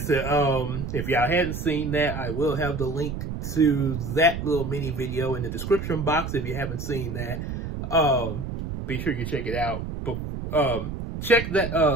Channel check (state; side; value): noise; right; rumble, 6 dB below the sound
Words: if y'all hadn't seen that, I will have the link to that little mini video in the description box if you haven't seen that. Be sure you check it out. Check